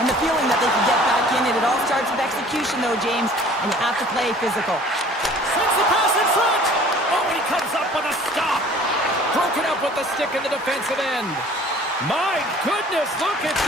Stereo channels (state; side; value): normal; both; correlation 0.50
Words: the feeling that they can get back in it. It all starts with execution, though, James, and you have to play physical. Sends the pass in front. Oh, he comes up with a stop. Broken up with the stick in the defensive end. My goodness, look at